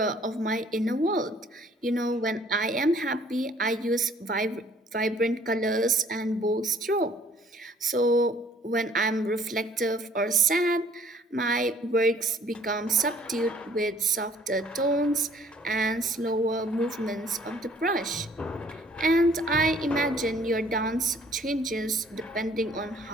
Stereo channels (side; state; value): both; normal; correlation 0.58